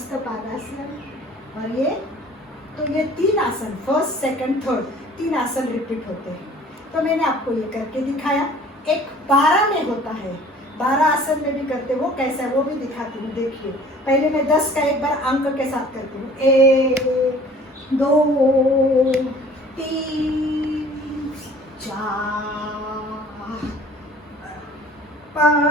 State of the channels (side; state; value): both; normal; correlation 0.50